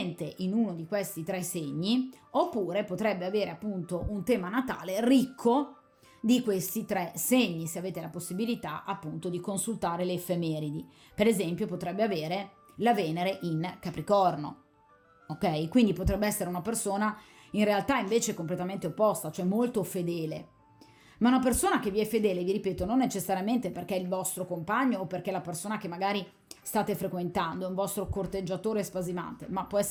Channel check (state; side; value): identical; both; correlation 1.00